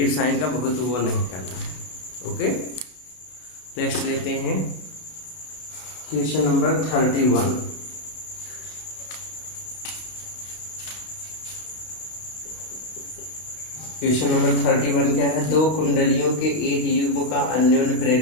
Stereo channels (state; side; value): late; right; 33 ms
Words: साइन का बहुत वो नहीं करना है। ओके, नेक्स्ट लेते हैं क्वेश्चन नंबर 31। क्वेश्चन नंबर 31 क्या है, दो कुंडलियों के एक युग्म का अन्योन्य